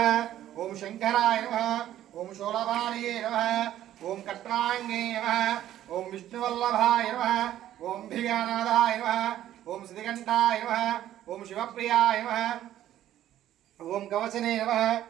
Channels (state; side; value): quieter; left; 12.4 dB